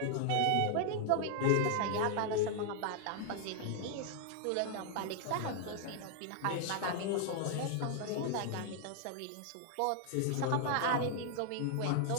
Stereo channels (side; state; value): both; different; correlation 0.00